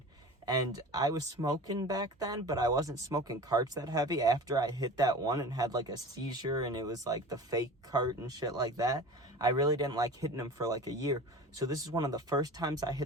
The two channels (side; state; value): both; normal; correlation 0.37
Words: And I was smoking back then, but I wasn't smoking carts that heavy. After I hit that one and had like a seizure and it was like the fake cart and shit like that, I really didn't like hitting him for like a year. So this is one of the first times I